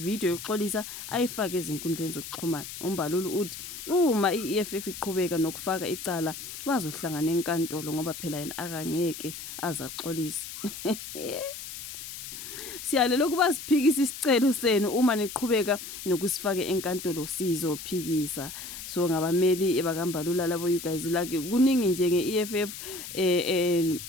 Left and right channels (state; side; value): noise; left; hiss, 10 dB below the sound